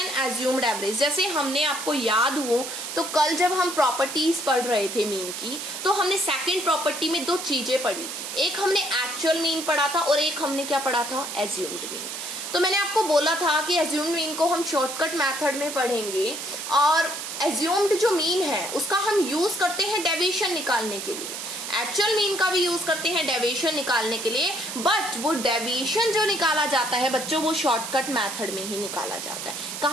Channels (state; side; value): noise; right; hiss, 7 dB below the sound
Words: assumed average. जैसे हमने, आपको याद हो तो कल जब हम प्रॉपर्टीज पढ़ रहे थे मीन की, तो हमने सेकंड प्रॉपर्टी में दो चीजें पढ़ी थी, एक हमने एक्चुअल मीन पढ़ा था और एक हमने क्या पढ़ा था, एज्यूम्ड मीन। तो मैंने आपको बोला था कि एज्यूम्ड मीन को हम शॉर्टकट मेथड में पढ़ेंगे और एज्यूम्ड जो मीन है उसका हम यूज करते हैं डेविएशन निकालने के लिए, एक्चुअल मीन का भी यूज करते हैं डेविएशन निकालने के लिए, बट वो डेविएशन जो निकाला जाता है बच्चों वो शॉर्टकट मेथड में ही निकाला जाता है।